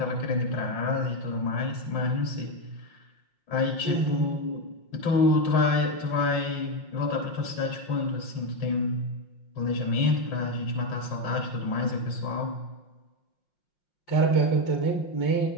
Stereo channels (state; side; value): late; right; 5.7 ms